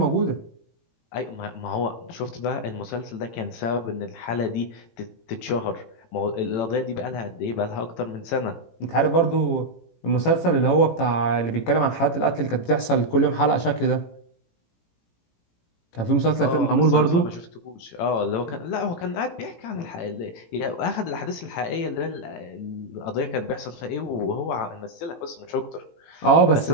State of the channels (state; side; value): late; right; 18 ms